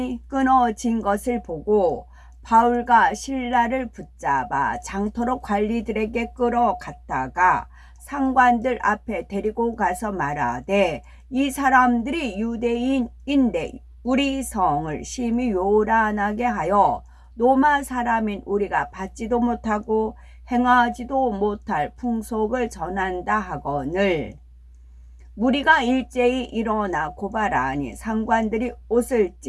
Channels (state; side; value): identical; both; correlation 1.00